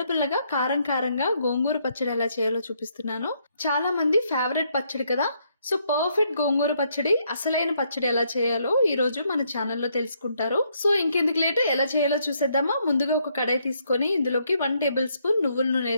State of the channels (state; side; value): inverted; both; correlation -0.73